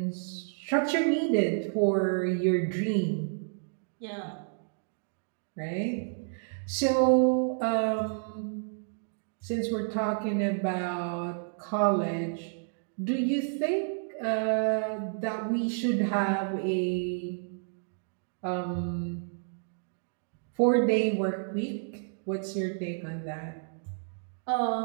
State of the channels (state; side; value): silent; left; digital silence